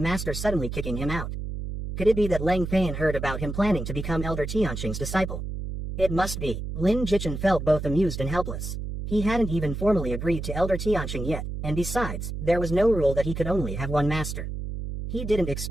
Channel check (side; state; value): right; noise; hum, 6 dB below the sound